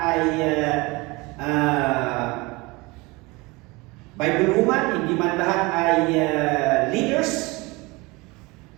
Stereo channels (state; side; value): quieter; left; 24.3 dB